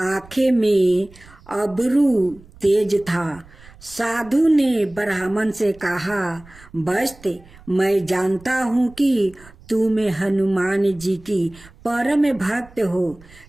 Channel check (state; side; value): noise; right; rumble, 23 dB below the sound